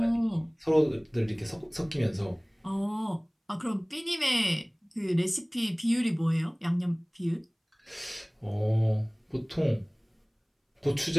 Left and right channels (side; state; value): both; identical; correlation 1.00